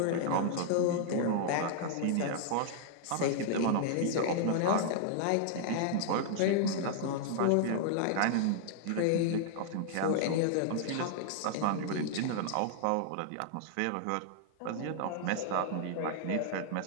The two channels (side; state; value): both; different; correlation -0.01